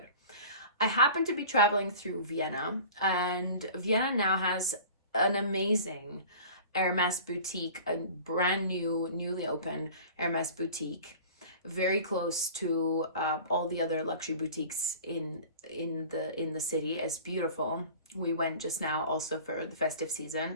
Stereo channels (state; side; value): inverted; both; correlation -0.41